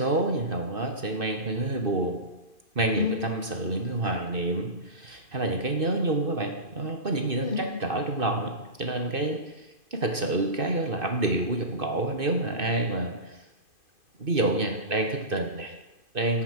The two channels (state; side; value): late; left; 2.6 ms